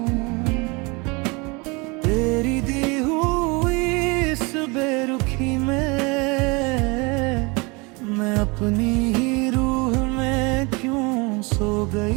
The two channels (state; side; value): quieter; left; 27.9 dB